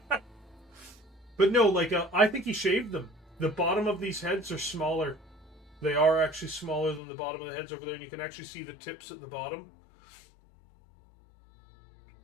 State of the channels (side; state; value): right; drops out; at 7.0 s